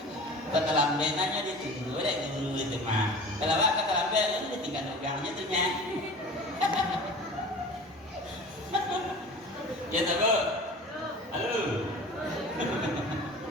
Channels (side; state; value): both; normal; correlation 0.39